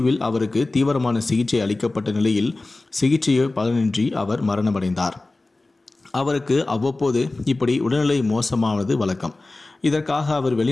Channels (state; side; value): quieter; right; 3.1 dB